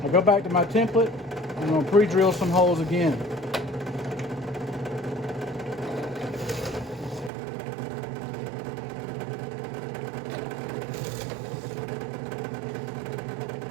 I'll go back to my template and I'm going to pre-drill some holes again.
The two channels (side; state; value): left; drops out; at 7.3 s